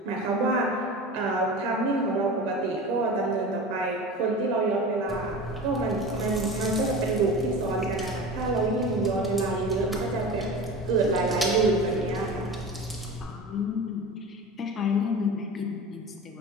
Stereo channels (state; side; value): normal; both; correlation 0.32